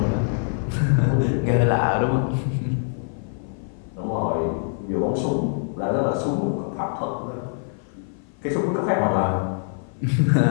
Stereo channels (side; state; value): right; silent; 57 dB below the other